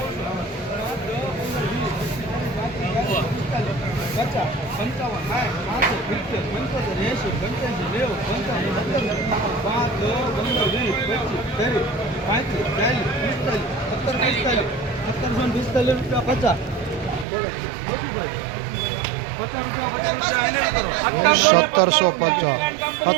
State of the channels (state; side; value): drops out; left; at 17.2 s